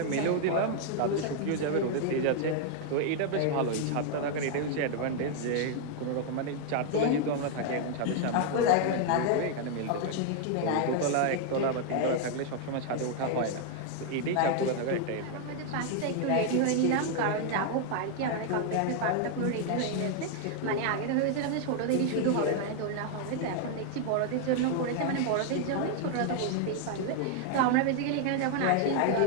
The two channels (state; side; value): different; both; correlation 0.00